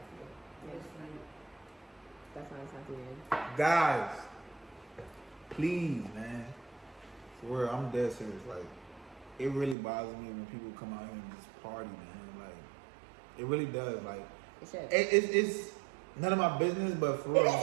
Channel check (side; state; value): left; drops out; at 9.8 s